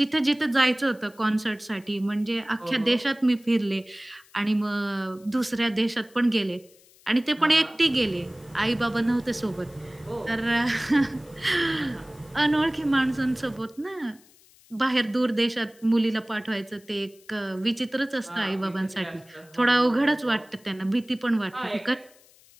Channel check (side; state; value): left; noise; hiss, 28 dB below the sound